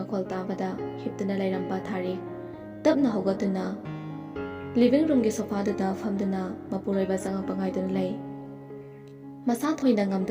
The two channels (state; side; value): identical; both; correlation 1.00